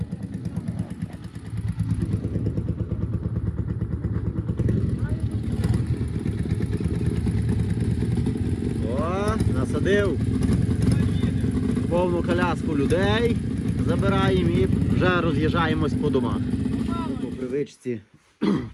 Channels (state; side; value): identical; both; correlation 1.00